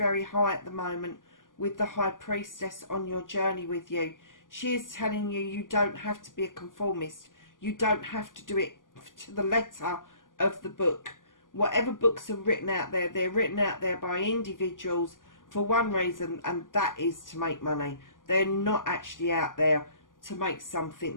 high at the moment with the High Priestess on your journey with you. She is telling you you don't have to be a conformist. You don't have to do it to the letter of the book. Whatever books are written out there, they're written out there by individuals for one reason, and that is to make money. They're not actually out there to make something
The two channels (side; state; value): right; late; 0.89 ms